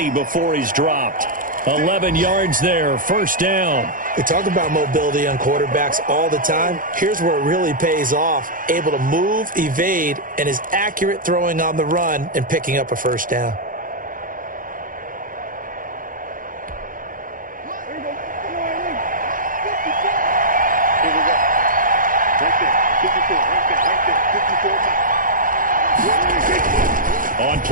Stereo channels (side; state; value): left; late; 0.40 ms